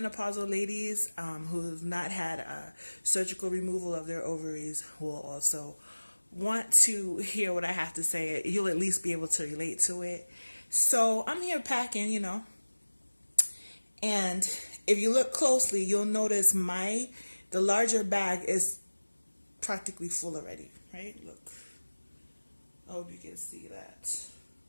ladies who have not had a surgical removal of their ovaries will also want to hear what I have to say. You'll at least be able to relate to it. So I'm here packing, and if you look closely, you'll notice the larger bag is practically full already, right? Look. I hope you can see that.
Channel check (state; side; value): inverted; both; correlation -1.00